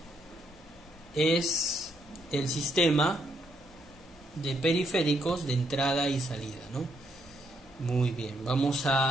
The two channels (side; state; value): both; normal; correlation 0.74